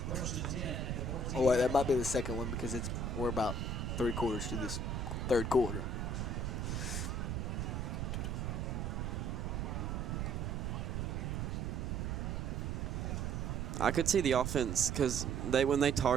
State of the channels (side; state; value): right; noise; rumble, 2 dB below the sound